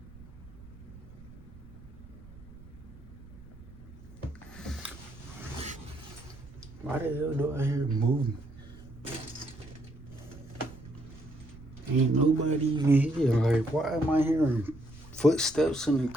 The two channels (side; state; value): right; noise; rumble, 19 dB below the sound